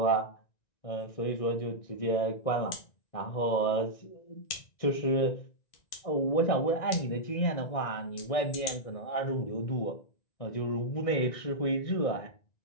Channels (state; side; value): late; right; 1.9 ms